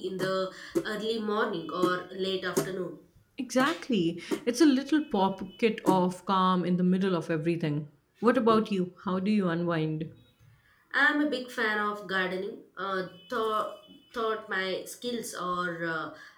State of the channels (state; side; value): identical; both; correlation 1.00